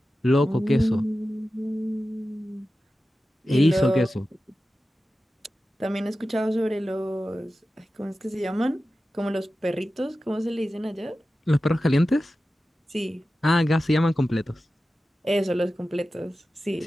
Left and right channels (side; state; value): both; normal; correlation 0.94